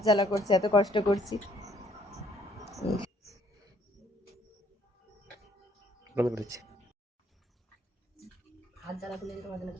জ্বালা করছে, এত কষ্ট করছি। হাত জ্বালা করলে তোমাদের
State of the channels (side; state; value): both; normal; correlation 0.64